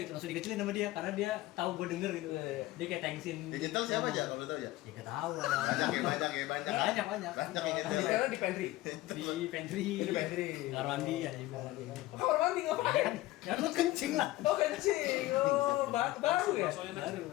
gitu, langsung dikecilin sama dia karena dia tahu gue denger gitu. Dia kayak thanksin. Digital siapa aja kalau tahu ya? Ya gak tahu lah. Banyak ya. Banyak. Banyak yang Di nyetel. di pantry. Di pantry. Di pantry. Kamar mandi ya juga. Kamar mandi ngapain? Ya lu kencing lah. Oh kencing. Oh baru ya? Baru.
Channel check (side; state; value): right; quieter; 17.4 dB